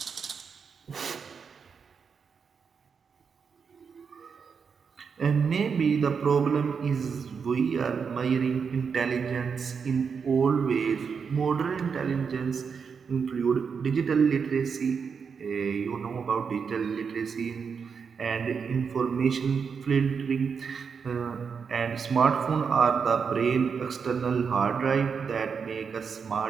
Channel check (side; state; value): left; quieter; 6.1 dB